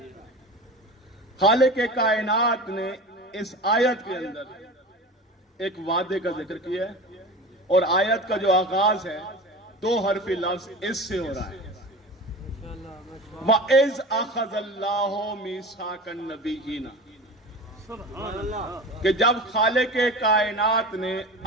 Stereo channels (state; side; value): normal; both; correlation 0.32